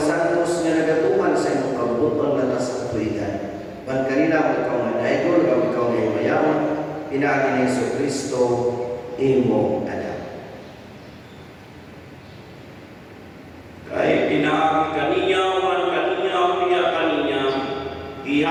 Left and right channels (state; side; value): identical; both; correlation 1.00